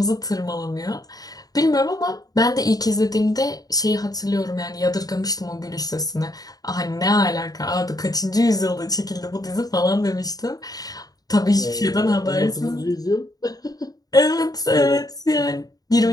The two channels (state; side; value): late; right; 0.18 ms